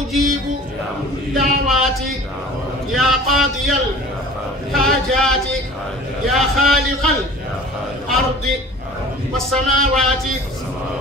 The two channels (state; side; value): normal; both; correlation 0.44